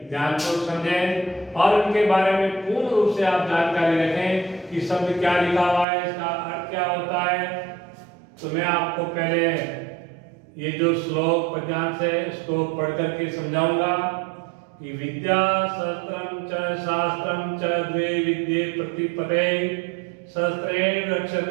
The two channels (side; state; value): left; drops out; at 5.9 s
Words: ध्यानपूर्वक समझें और उनके बारे में पूर्ण रूप से आप जानकारी रखें कि शब्द क्या लिखा हुआ है, इसका अर्थ क्या होता है। तो मैं आपको पहले ये जो श्लोक पद्यांश है इसको पढ़ करके समझाऊंगा कि विद्या शस्त्रम च शास्त्रम च द्वे विद्ये प्रतिपदे शस्त्रेण